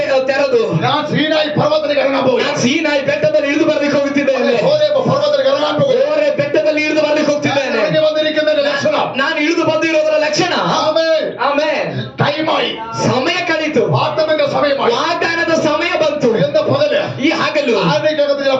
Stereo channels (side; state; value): both; identical; correlation 1.00